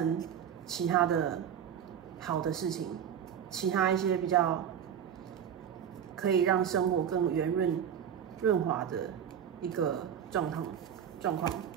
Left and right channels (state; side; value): quieter; left; 8.8 dB